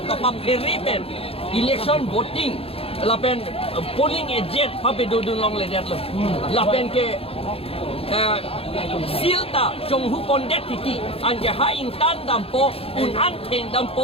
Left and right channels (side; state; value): right; late; 0.28 ms